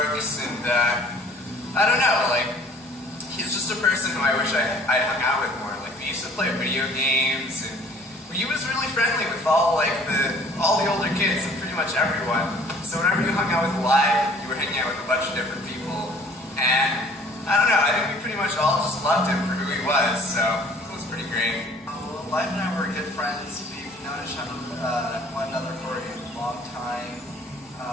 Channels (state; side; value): normal; both; correlation 0.53